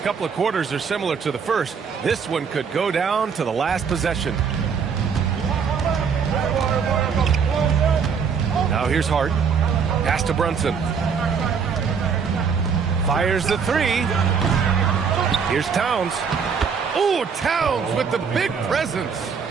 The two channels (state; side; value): quieter; left; 6.3 dB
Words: couple of quarters are similar to the first, this one could go down to the last possession. Now here's Hart. Pass to Brunson. Fires the three. Here's Towns. Oh, Towns with the big presence.